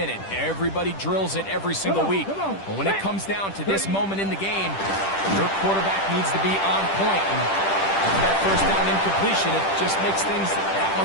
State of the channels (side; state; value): right; late; 10 ms